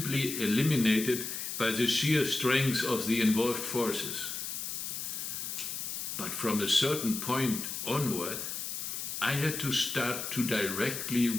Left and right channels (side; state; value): left; noise; hiss, 5 dB below the sound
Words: eliminated by the sheer strength of the involved forces. But from a certain point onward, I had to start to directly